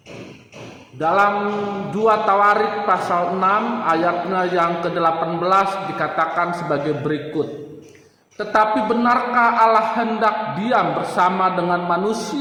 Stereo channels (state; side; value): identical; both; correlation 1.00